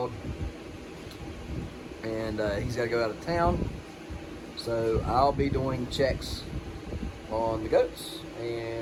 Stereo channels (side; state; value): both; identical; correlation 1.00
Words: and he's got to go out of town. So I'll be doing checks on the goats,